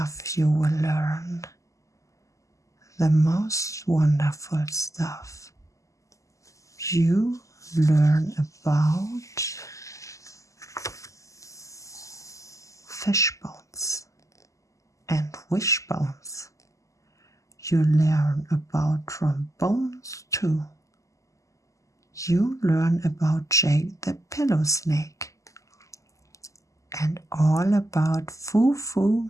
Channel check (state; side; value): late; right; 0.16 ms